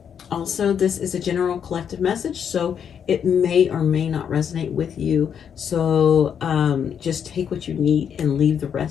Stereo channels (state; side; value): quieter; right; 8.0 dB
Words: Also, this is a general collective message, so it may or may not resonate with you. So just take what you need and leave the